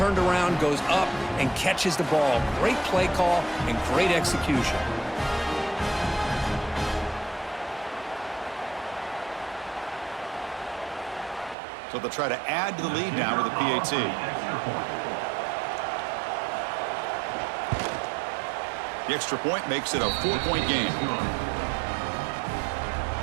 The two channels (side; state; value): left; drops out; at 11.6 s